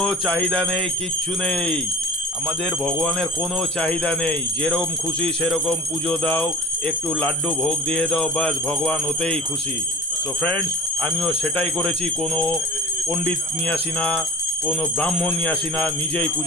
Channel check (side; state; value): both; normal; correlation 0.39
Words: চাহিদা নেই, কিচ্ছু নেই। আমাদের ভগবানের কোনো চাহিদা নেই। যেরকম খুশি সেরকম পুজো দাও, একটু লাড্ডু ভোগ দিয়ে দাও, বাস ভগবান ওতেই খুশি। সো ফ্রেন্ডস, আমিও সেটাই করেছি। কোনো পণ্ডিত নিয়ে আসি না, কোনো ব্রাহ্মণ নিয়ে আসি না, নিজেই